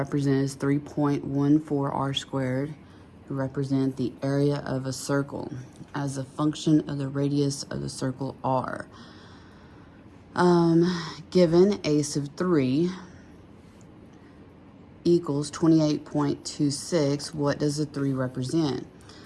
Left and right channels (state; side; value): identical; both; correlation 1.00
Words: as 3.14 r squared, represent the area of a circle as a function of the radius of the circle r. Given a sub 3 equals 28.26, what does the 3 represent?